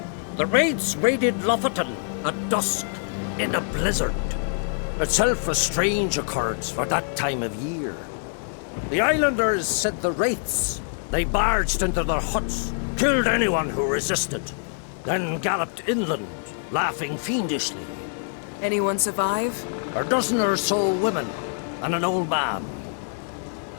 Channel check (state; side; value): silent; right; 58 dB below the other